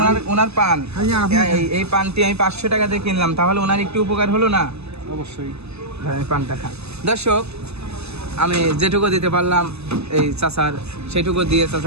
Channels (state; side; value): late; left; 0.79 ms